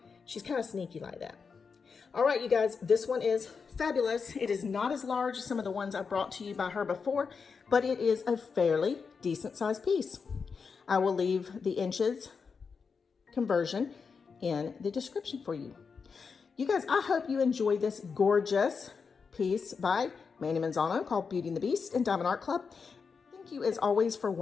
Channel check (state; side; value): quieter; right; 5.5 dB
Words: She's kind of sneaky like that. All right, you guys, this one is fabulous. It is not as large as some of the ones I brought to you by her before, but it is a fairly decent sized piece. I will leave the inches conversion in the description for you. You guys, I hope you enjoyed this gorgeous piece by Mandie Manzano called Beauty and the Beast in Diamond Art Club. Thank you as always for